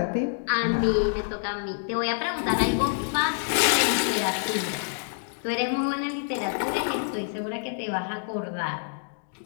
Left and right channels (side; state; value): right; silent; digital silence